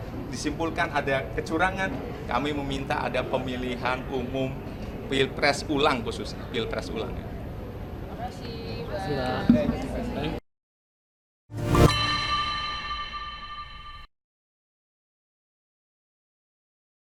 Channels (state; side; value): identical; both; correlation 1.00